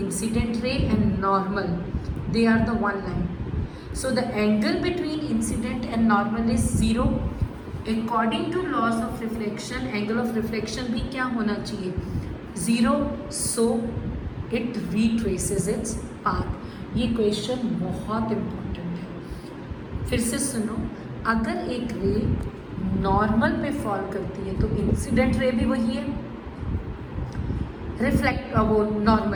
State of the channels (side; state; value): both; identical; correlation 1.00